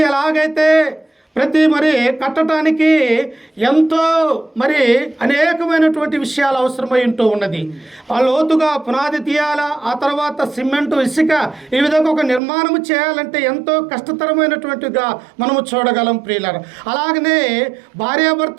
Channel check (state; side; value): drops out; left; at 12.4 s